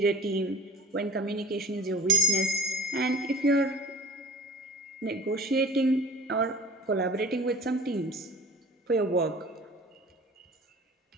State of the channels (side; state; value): both; normal; correlation 0.41